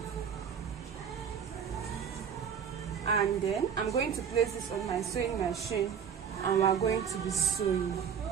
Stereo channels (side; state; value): left; quieter; 7.5 dB